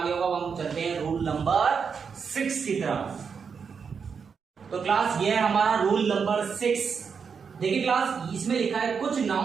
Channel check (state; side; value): quieter; left; 6.1 dB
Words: गया होगा। अब हम चलते हैं रूल नंबर 6 की तरफ। तो क्लास ये है हमारा रूल नंबर 6। देखिए क्लास, इसमें लिखा है कुछ